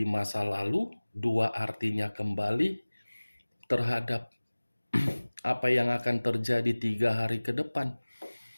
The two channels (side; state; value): both; inverted; correlation -1.00